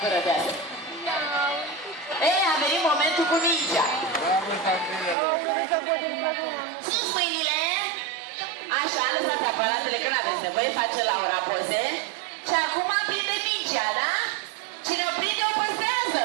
Curăteasă. Ei, a venit momentul cu mingea. Sus mâinile. Așa, lăsați aparatele, că n-aveți nevoie, face Laura poze. Și acum prinde mingea, da? Cine o prinde, o păstrează.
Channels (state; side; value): drops out; left; at 5.2 s